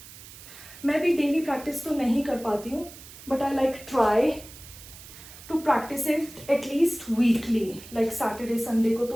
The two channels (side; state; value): right; noise; hiss, 17 dB below the sound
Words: मैं भी डेली प्रैक्टिस तो नहीं कर पाती हूँ but I like try to practice it at least weekly. Like Saturday Sunday को